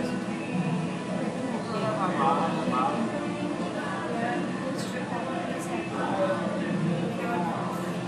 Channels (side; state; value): both; identical; correlation 1.00